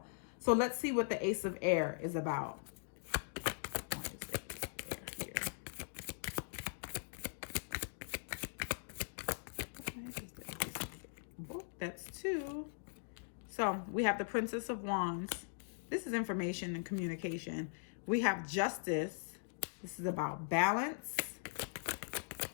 So let's see what the Ace of Air is about. That's 2. So we have the Princess of Wands. This is information and communication. We have Justice. This is about balance.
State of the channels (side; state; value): right; silent; digital silence